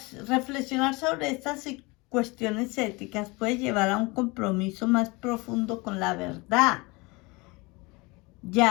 Reflexionar sobre estas cuestiones éticas puede llevar a un compromiso más profundo con la verdad.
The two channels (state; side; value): quieter; right; 25.4 dB